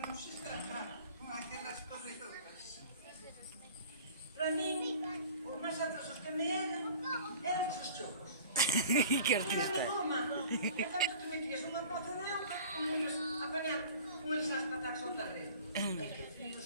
se estrafar con aquelas corredoras. Para min, os máis atrasos que me eran os chocos. Que artista. Era de goma. E tanto que metías unha moza de auga, como eles apañar con eles as patadas ao terreno. E que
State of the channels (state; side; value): inverted; both; correlation -0.44